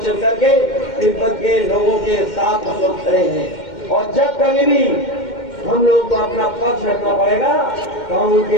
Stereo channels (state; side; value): late; right; 2.1 ms